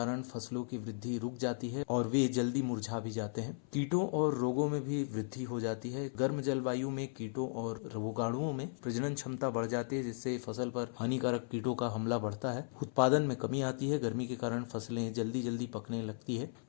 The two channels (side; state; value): right; silent; 54 dB below the other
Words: फसलों की वृद्धि रुक जाती है और वे जल्दी मुरझा भी जाते हैं। कीटों और रोगों में भी वृद्धि हो जाती है। गर्म जलवायु में कीटों और रोगाणुओं में प्रजनन क्षमता बढ़ जाती है, जिससे फसल पर हानिकारक कीटों का हमला बढ़ता है। उत्पादन में कमी आती है। गर्मी के कारण फसलें जल्दी जल्दी पकने लगती है,